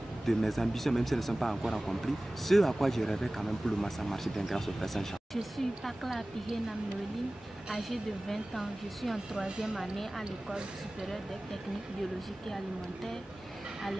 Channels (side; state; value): both; normal; correlation 0.98